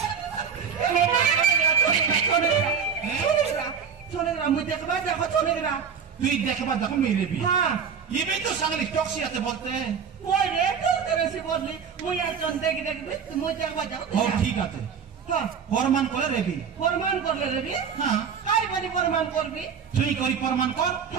छोड़ेगा मुझे देखबा देखो छोड़ेगा तू देखबा देखो मेरे भी हाँ ये भी तो संगली टॉक्सी आते बोलते हैं वो ये तो तेरे से बोल ली मुझे चंदे की देख मुझे देखबा जाओ और ठीक आते हाँ फरमान करे रे भी फरमान कर ले रे भी हाँ काय बनी फरमान कर भी चुई करी फरमान कर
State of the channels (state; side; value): quieter; left; 6.8 dB